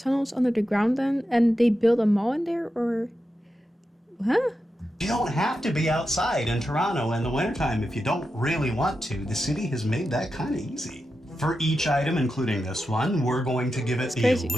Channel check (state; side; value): normal; both; correlation 0.89